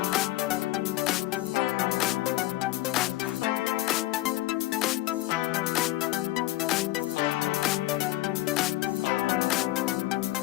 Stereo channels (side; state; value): right; quieter; 16.7 dB